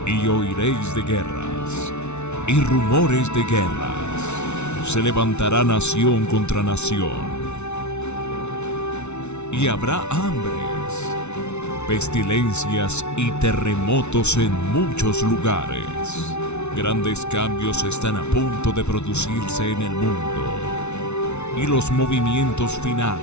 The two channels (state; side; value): late; right; 0.82 ms